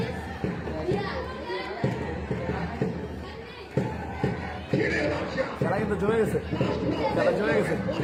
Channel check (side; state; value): both; identical; correlation 1.00